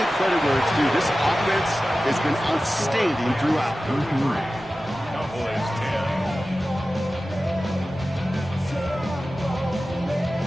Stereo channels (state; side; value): normal; both; correlation 0.95